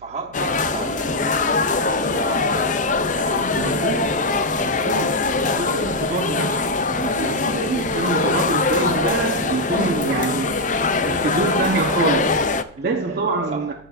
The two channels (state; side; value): noise; right; hum, 27 dB below the sound